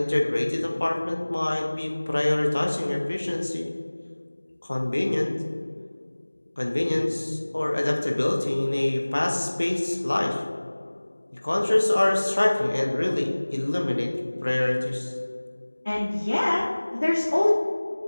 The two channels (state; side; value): inverted; both; correlation -1.00